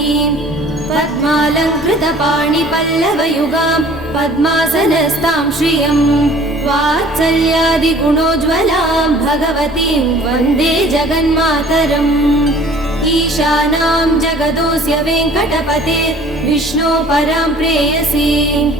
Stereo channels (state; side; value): normal; both; correlation 0.50